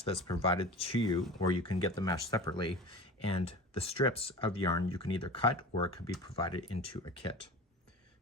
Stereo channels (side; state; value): both; normal; correlation 0.35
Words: that's provided to you, or you can get the mesh separately, and the strips of yarn you can either cut or it could be provided into a kit.